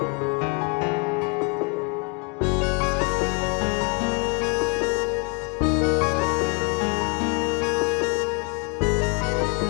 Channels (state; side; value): quieter; right; 34.3 dB